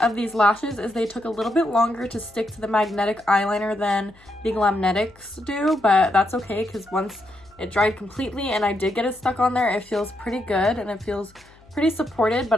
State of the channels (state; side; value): noise; left; hum, 28 dB below the sound